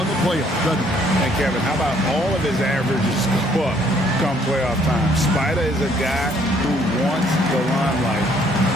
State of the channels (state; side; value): normal; both; correlation 0.64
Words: the playoffs. And Kevin, how about all of his averages go up come playoff time? Spider is a guy who wants the limelight,